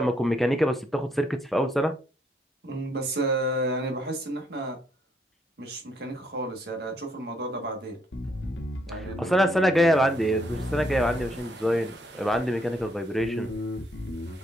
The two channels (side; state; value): both; normal; correlation 0.71